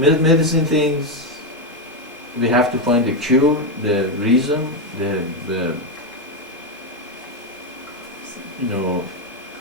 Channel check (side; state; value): both; normal; correlation 0.07